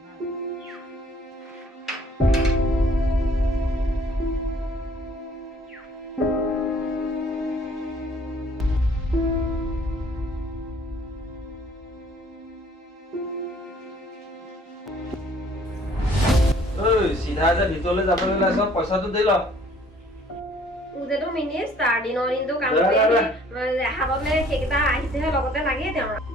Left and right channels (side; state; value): both; normal; correlation 0.57